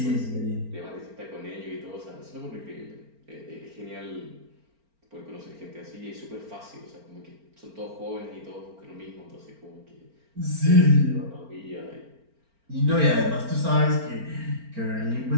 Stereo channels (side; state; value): left; late; 4.4 ms